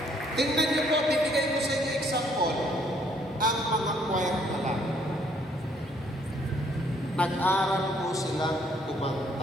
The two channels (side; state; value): both; normal; correlation 0.66